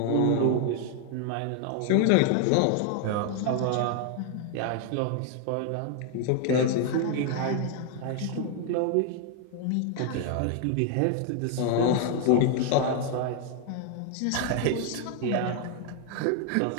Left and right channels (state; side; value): different; both; correlation 0.00